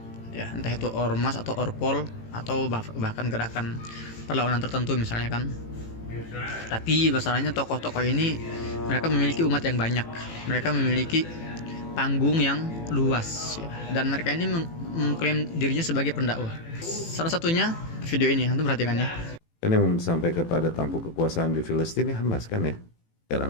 Ya, entah itu ormas atau orpol atau bahkan gerakan perlawanan tertentu misalnya kan. Tapi masalahnya tokoh-tokoh ini mereka memiliki umat yang banyak, mereka memiliki panggung yang luas ya. Dan mereka ini mengklaim dirinya sebagai pendakwah. Salah satunya video ini, antum perhatikan ya. Kan yang sampai kepada tampuk kekuasaan di Filistin ini Hamas kan ya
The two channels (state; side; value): late; right; 18 ms